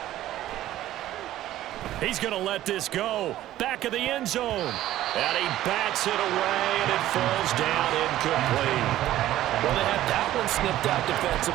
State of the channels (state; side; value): quieter; left; 13.9 dB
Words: He's going to let this go. Back of the end zone. And he bats it away, and it falls down incomplete. Well, they had that one snipped out